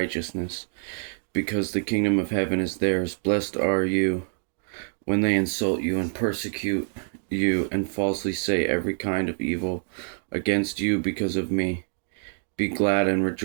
because the kingdom of heaven is theirs. Blessed are you when they insult you and persecute you and falsely say every kind of evil against you because of me. Be glad and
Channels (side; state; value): left; silent; 61 dB below the other